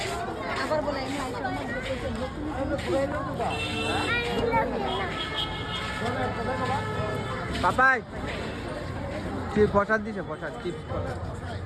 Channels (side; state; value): both; identical; correlation 1.00